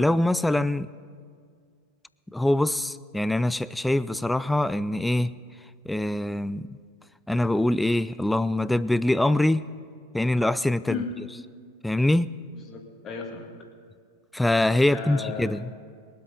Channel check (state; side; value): normal; both; correlation 0.95